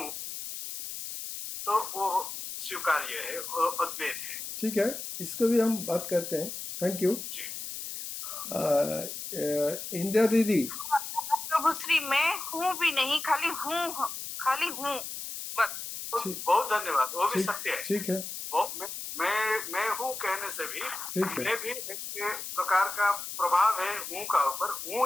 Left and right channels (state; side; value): noise; left; hiss, 7 dB below the sound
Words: तो वो स्वीकार्य है, वो अद्वैत है। ठीक है, इसको भी हम बात करते हैं। Thank you. जी इंदिरा दीदी। प्रभु श्री मैं हूँ भी नहीं, खाली हूँ बस। ठीक बहुत धन्यवाद, वो भी ठीक सत्य है। ठीक है, वो मैं हूँ कहने से भी ठीक है। मैं भी एक प्रकार का प्रभाव है हूँ का ऊपर,